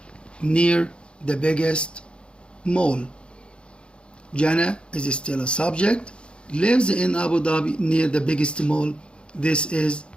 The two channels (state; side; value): late; right; 0.056 ms